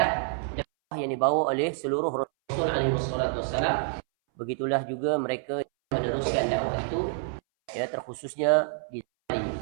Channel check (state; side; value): silent; left; 60 dB below the other